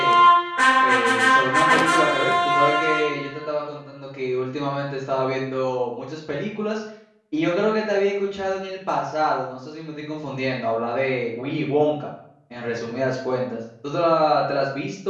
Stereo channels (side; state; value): both; identical; correlation 1.00